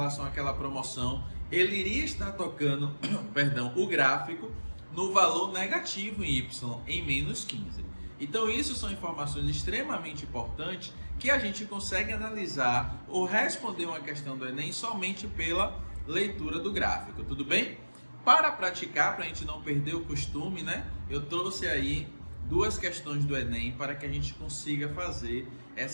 àquela promoção, ele iria estar tocando perdão, o gráfico no valor negativo em y, em menos 15. Então isso são informações extremamente importantes que a gente consegue analisar ou responder uma questão do Enem somente pela leitura do gráfico, tudo bem? Para praticar, para a gente não perder o costume, né? Eu trouxe aí duas questões do Enem para que a gente consiga fazer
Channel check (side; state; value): both; inverted; correlation -1.00